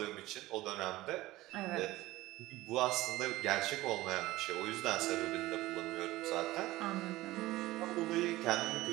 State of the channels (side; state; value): left; quieter; 17.8 dB